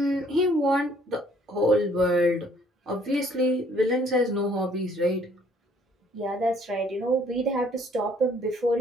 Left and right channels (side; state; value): both; normal; correlation 0.61